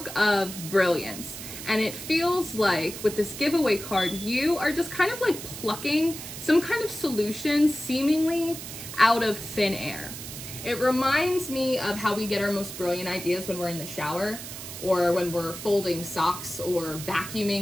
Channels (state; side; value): noise; right; hiss, 10 dB below the sound